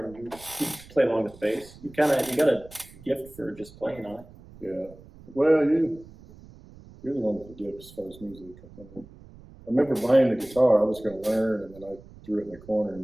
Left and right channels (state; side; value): noise; right; rumble, 21 dB below the sound